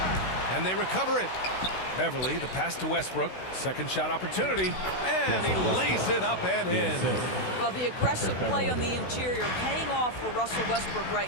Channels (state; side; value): late; right; 16 ms